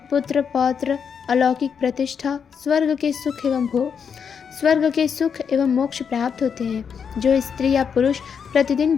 पुत्र पौत्र, अलौकिक प्रतिष्ठा, स्वर्ग के सुख एवं मोक्ष प्राप्त होते हैं। जो स्त्री या पुरुष प्रतिदिन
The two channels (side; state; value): right; quieter; 6.8 dB